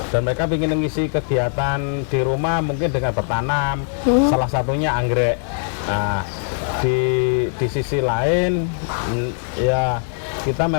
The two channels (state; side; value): silent; right; digital silence